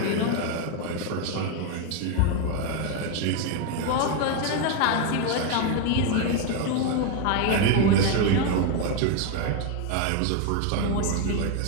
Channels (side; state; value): both; different; correlation 0.01